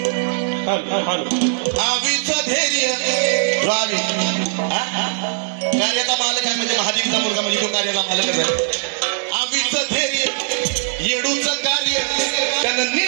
आवीचं धैर्य कार्याचा मालक आहे म्हणजे महादेवीचा मुलगा म्हणजे तो कार्याचा मालकच आहे. आवीचं धैर्य येडूचं कार्य त्यानं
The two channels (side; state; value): left; silent; 62 dB below the other